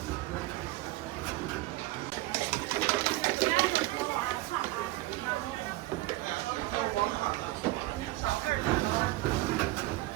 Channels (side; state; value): left; quieter; 18.3 dB